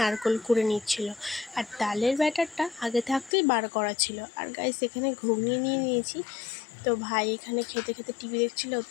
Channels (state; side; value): drops out; right; at 3.4 s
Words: কুড়ে নিচ্ছিল, আর তালের ব্যাটারটা আগে থাকতেই বার করা ছিল। আর গাইস এখানে ঘুগনি নিয়ে নিয়েছি। তো ভাই এখানে খেতে খেতে টিভি দেখছিল, ওর